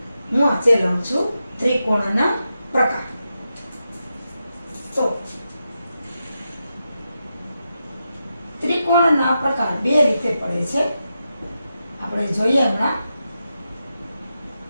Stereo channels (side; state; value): both; inverted; correlation -0.88